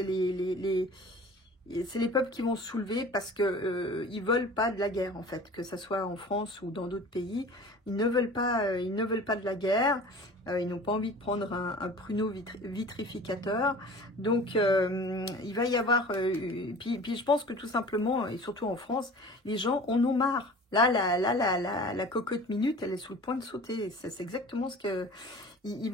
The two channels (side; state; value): both; normal; correlation 0.41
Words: les peuples qui vont se soulever parce que ils veulent pas de la guerre en fait, que ça soit en France ou dans d'autres pays, ils ne veulent pas de la guerre, ils n'ont pas envie de prendre un pruneau vitrificateur, donc il va y avoir, puis je pense que tout simplement et surtout en France, les gens en ont marre. Là, la cocotte minute, elle est sous le point de sauter. C'est exactement ce que il